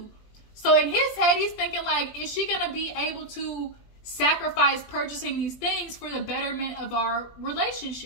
So in his head, he's thinking like, is she gonna be able to sacrifice purchasing these things for the betterment of our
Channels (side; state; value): right; late; 20 ms